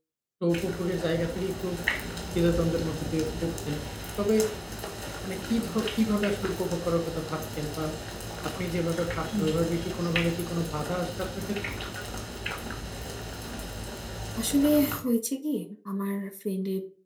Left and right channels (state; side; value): identical; both; correlation 1.00